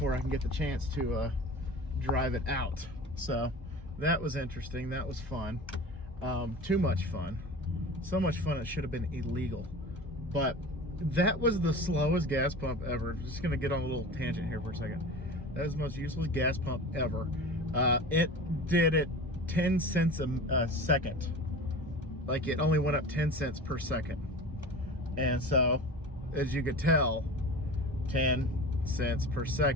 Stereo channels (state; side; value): normal; both; correlation 0.35